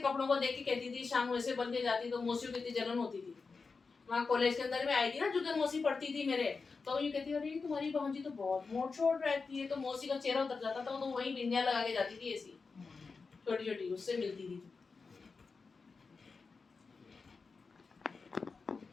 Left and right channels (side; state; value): right; quieter; 4.6 dB